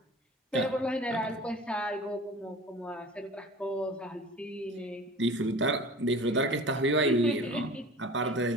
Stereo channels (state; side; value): normal; both; correlation 0.40